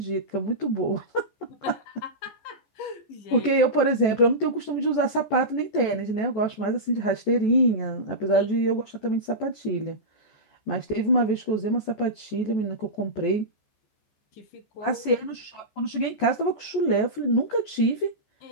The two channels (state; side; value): late; right; 14 ms